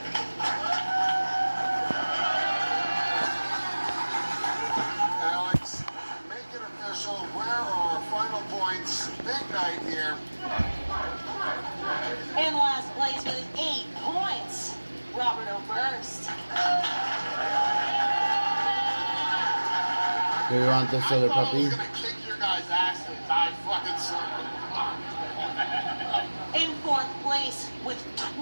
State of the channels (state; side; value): inverted; both; correlation -1.00